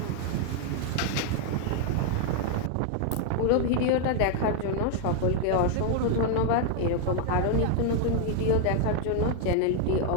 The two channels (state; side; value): different; both; correlation 0.00